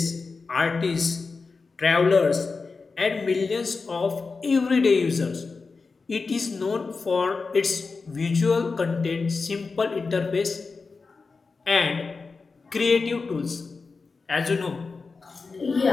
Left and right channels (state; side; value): quieter; right; 4.4 dB